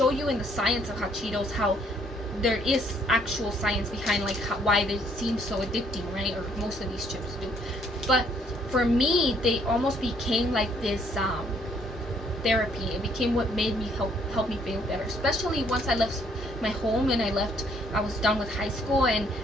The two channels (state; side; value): normal; both; correlation 0.66